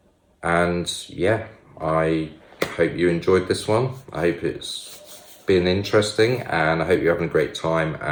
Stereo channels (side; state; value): both; identical; correlation 1.00